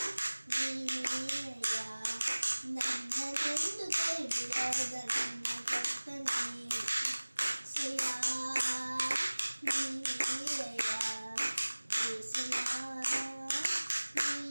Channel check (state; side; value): inverted; both; correlation -1.00